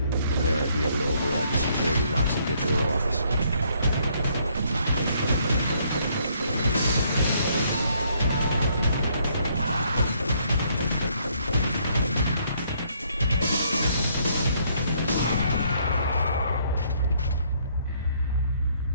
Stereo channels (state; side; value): inverted; both; correlation -0.68